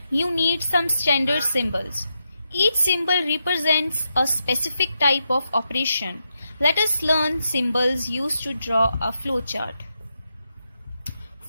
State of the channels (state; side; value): inverted; both; correlation -0.85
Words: you need some standard symbols. Each symbol represents a specific type of operation. Let us learn symbols used to draw a flowchart.